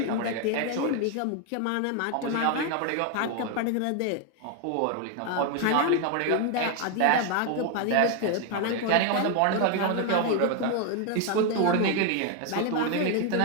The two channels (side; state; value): both; different; correlation 0.01